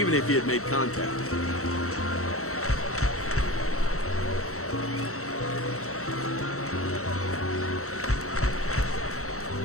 if he had made contact.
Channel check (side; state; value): right; late; 0.64 ms